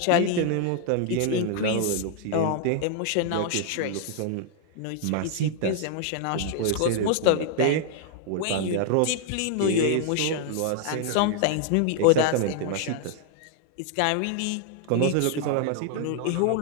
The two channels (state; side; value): different; both; correlation 0.00